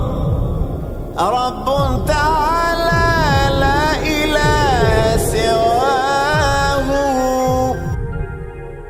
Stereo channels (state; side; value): identical; both; correlation 1.00